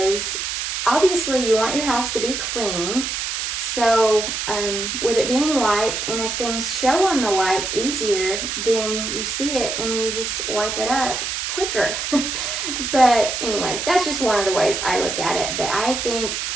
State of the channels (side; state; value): right; noise; hiss, 3 dB below the sound